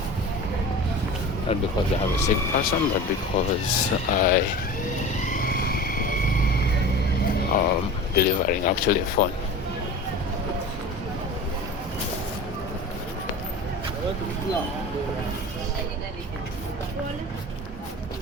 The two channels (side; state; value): both; normal; correlation 0.34